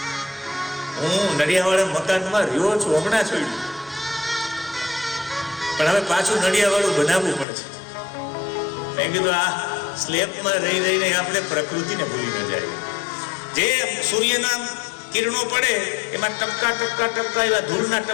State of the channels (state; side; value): drops out; right; at 7.5 s